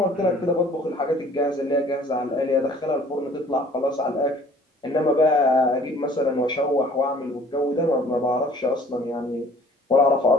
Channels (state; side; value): normal; both; correlation 0.53